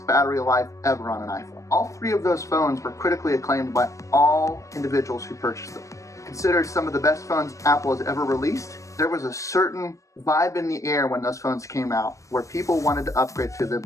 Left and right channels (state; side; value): late; right; 0.15 ms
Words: battery life ever on an iPhone? All three of those phones were critically acclaimed by all individuals who purchased them. Considered some of the best phones Apple has ever released, there was a certain vibe in the air when those phones came out where people wanted to upgrade to them